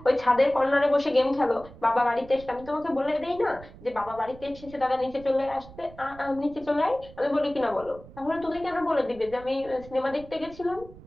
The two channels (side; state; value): right; noise; rumble, 19 dB below the sound